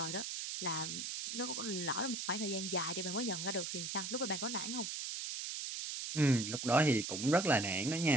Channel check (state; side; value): noise; right; hiss, 4 dB below the sound